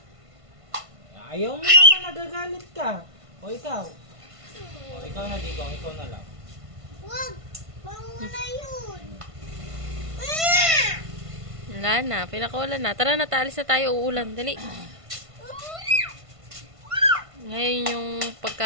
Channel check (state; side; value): late; left; 1.5 ms